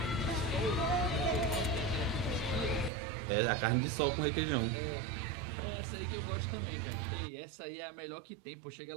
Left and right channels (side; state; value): left; drops out; at 2.9 s